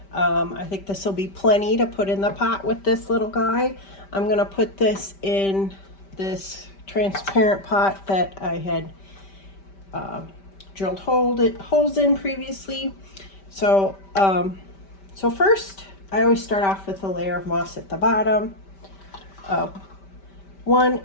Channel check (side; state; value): right; late; 5.1 ms